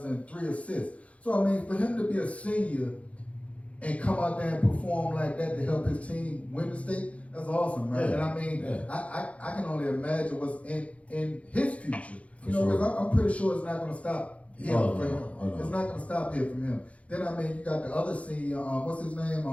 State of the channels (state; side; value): late; right; 0.064 ms